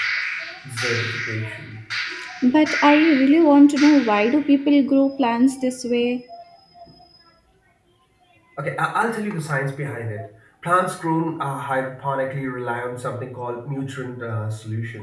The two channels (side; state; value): both; identical; correlation 1.00